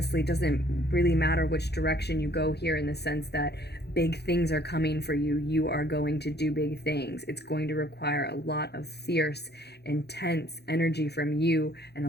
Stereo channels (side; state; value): right; late; 0.48 ms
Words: doesn't really matter which direction you go here, in the sense that big things are coming for you. You are going to do big things. It's going to require a lot of fierce, intense energy from you and